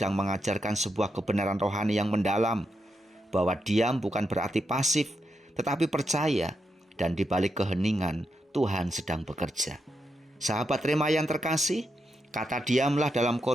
mengajarkan sebuah kebenaran rohani yang mendalam, bahwa diam bukan berarti pasif, tetapi percaya, dan di balik keheningan Tuhan sedang bekerja. Sahabat Rema yang terkasih, kata diamlah dalam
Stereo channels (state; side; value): normal; both; correlation 0.84